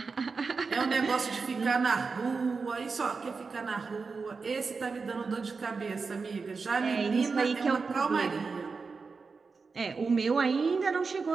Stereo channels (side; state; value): left; quieter; 4.7 dB